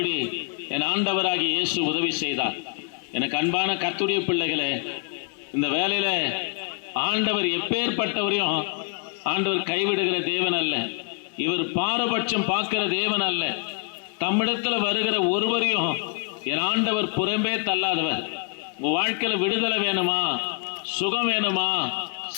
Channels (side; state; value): right; quieter; 36.5 dB